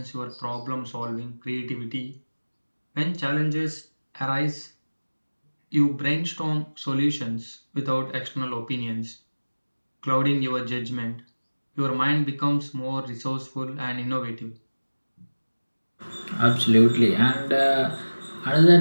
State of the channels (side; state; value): both; inverted; correlation -1.00